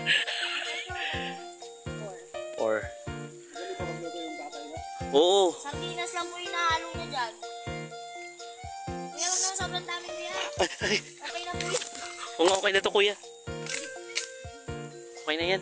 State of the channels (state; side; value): identical; both; correlation 1.00